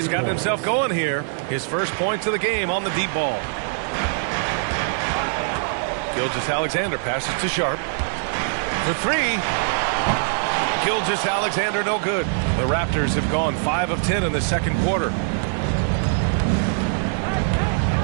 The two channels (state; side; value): silent; left; digital silence